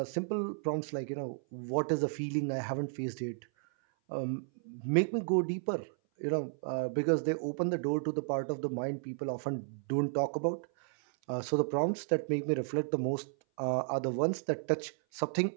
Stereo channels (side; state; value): left; silent; 56 dB below the other